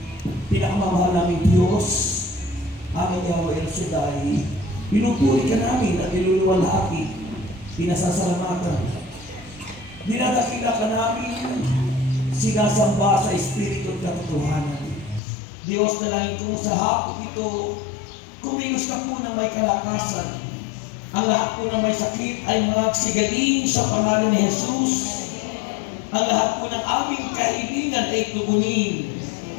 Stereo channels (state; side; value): drops out; right; at 15.2 s